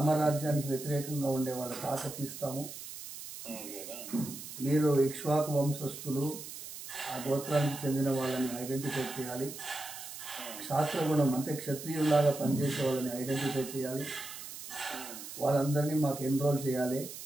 వ్యతిరేకంగా ఉండే వాళ్ళ తాట తీస్తాము. మీరు ఇక్ష్వాకు వంశస్థులు, ఆ గోత్రానికి చెందిన వాళ్ళని ఐడెంటిఫై చేయాలి. క్షాత్రగుణం అంటే క్షత్రియుల్లాగా పనిచేసే వాళ్ళని ఐడెంటిఫై చేయాలి. వాళ్ళందరినీ మాకు ఎన్రోల్ చేయాలి.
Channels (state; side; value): noise; right; hiss, 11 dB below the sound